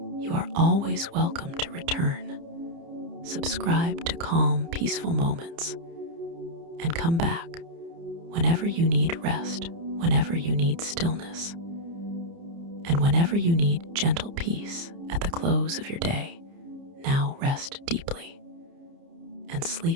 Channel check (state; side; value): late; left; 30 ms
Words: you are always welcome to return. Subscribe to Calm, Peaceful Moments and come back whenever you need rest, whenever you need stillness, and whenever you need gentle peace at the close of your day. Now rest deeply and